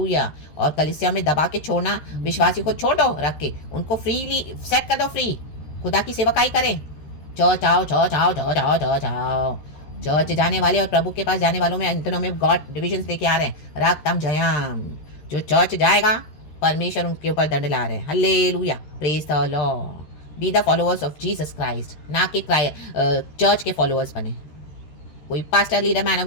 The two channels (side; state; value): right; late; 13 ms